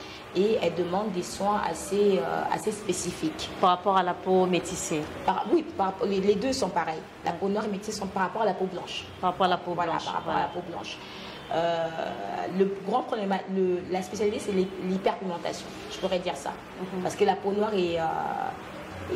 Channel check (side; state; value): both; identical; correlation 1.00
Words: et elle demande des soins assez spécifiques. Par rapport à la peau métissée? Oui, les deux sont pareils. La peau noire et métissée sont par rapport à la peau blanche. Par rapport à la peau blanche. Voilà, par rapport à la peau blanche. Le grand problème, la spécialité, c'est l'hyperpigmentation. Je pourrais dire ça. Parce que la peau noire